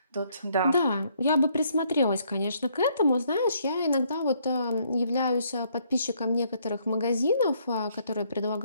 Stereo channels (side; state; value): both; inverted; correlation -0.69